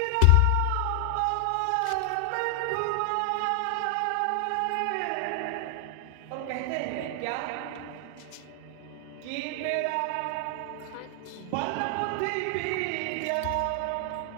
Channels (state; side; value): different; both; correlation 0.00